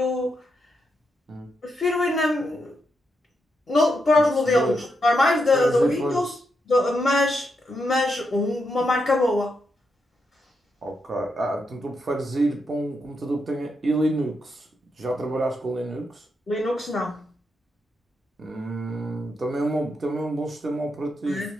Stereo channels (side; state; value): both; normal; correlation 0.82